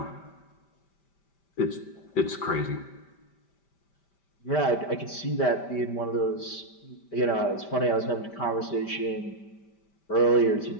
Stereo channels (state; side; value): late; right; 5.1 ms